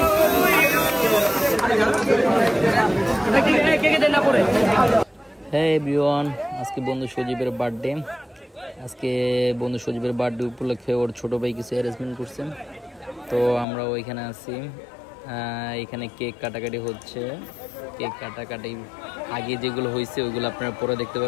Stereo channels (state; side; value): drops out; right; at 13.7 s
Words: এভরিওয়ান, আজকে বন্ধু সজীবের বার্থডে। আজকে বন্ধু সজীবের বার্থডে উপলক্ষে ওর ছোট ভাই কিছু অ্যারেঞ্জমেন্ট করছেন, তো আমরা ওইখানে আছি। এখানে কেক কাটাকাটি হচ্ছে। কেক কাটাকাটি আগে যেগুলো হয়েছে ওইগুলো আপনারা পরে দেখতে